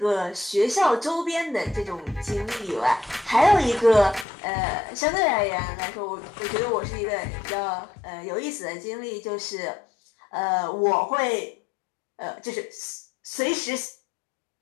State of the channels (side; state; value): right; drops out; at 4.2 s